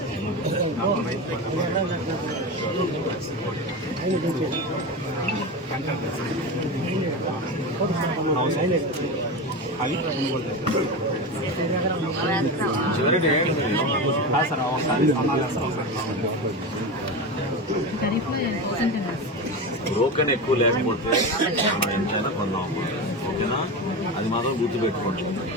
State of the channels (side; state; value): both; normal; correlation 0.22